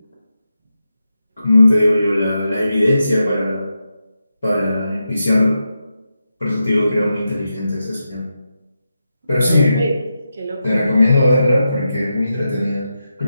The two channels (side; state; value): both; inverted; correlation -0.88